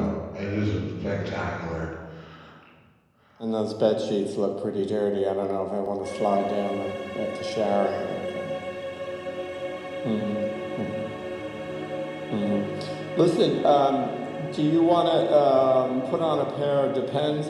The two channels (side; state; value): both; identical; correlation 1.00